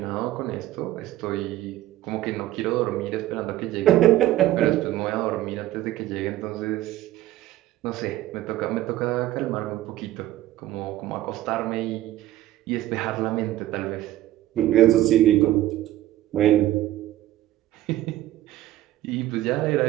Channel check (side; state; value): left; quieter; 14.6 dB